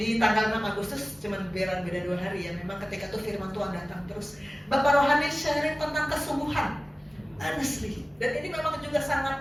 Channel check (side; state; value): both; normal; correlation 0.97